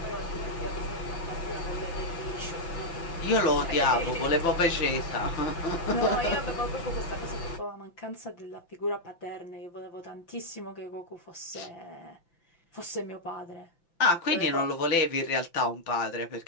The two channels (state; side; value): late; right; 5.9 ms